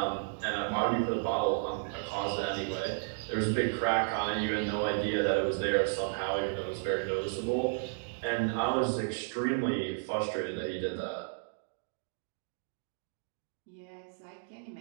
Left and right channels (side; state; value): left; silent; digital silence